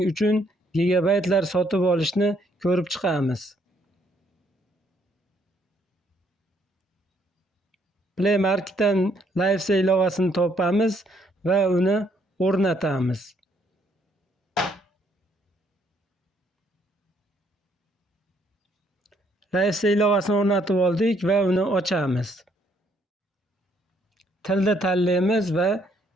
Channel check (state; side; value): normal; both; correlation 0.69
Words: uchun gigabaytlar sotib olishni ko'rib chiqamiz. Play Marketdan LifeSell ilovasini topamiz va uni o'rnatamiz. LifeSell ilovasini o'rnatib oldik va uni ochamiz. Tilni tanlaymiz va